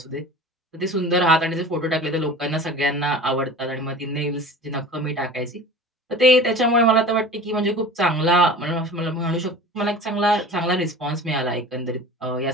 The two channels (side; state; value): both; normal; correlation 0.38